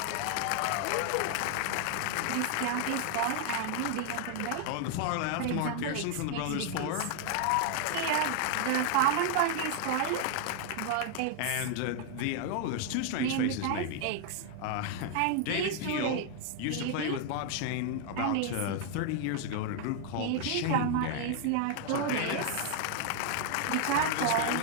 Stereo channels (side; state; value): both; different; correlation 0.00